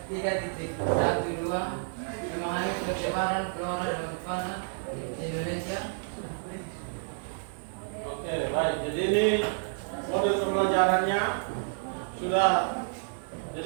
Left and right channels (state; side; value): silent; left; digital silence